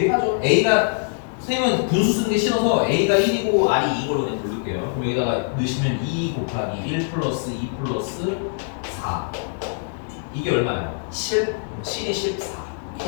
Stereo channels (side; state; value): right; silent; digital silence